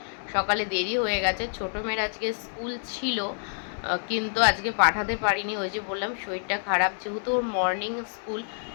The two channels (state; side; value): silent; right; digital silence